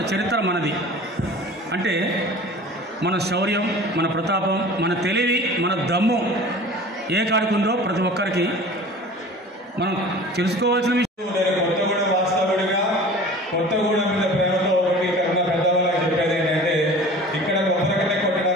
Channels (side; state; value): both; normal; correlation 0.41